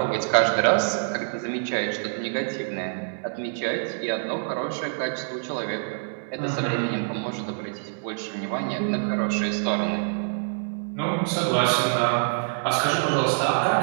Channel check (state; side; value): silent; left; 61 dB below the other